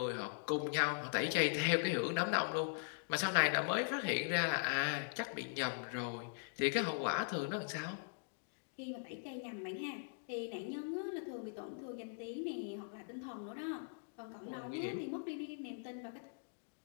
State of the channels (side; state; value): right; silent; digital silence